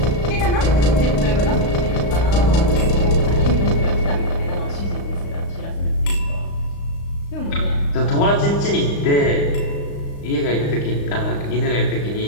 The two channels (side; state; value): right; late; 35 ms